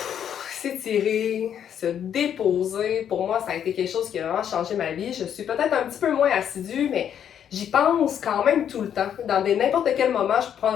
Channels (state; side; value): quieter; right; 9.1 dB